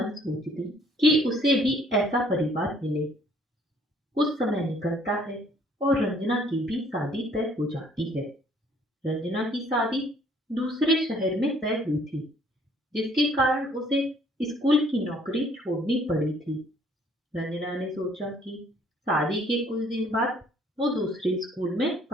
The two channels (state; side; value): normal; both; correlation 0.61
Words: सोचती कि उसे भी ऐसा परिवार मिले। कुछ समय निकलता है और रंजना की भी शादी तय हो जाती है। रंजना की शादी दूसरे शहर में तय हुई थी, जिसके कारण उसे स्कूल की नौकरी छोड़नी पड़ी थी। रंजना ने सोचा कि शादी के कुछ दिन बाद वो दूसरे स्कूल में